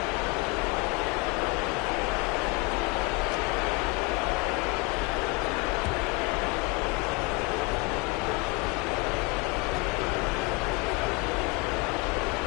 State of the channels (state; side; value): quieter; right; 26.4 dB